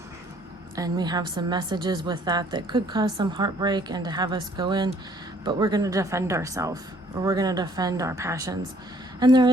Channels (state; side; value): normal; both; correlation 0.61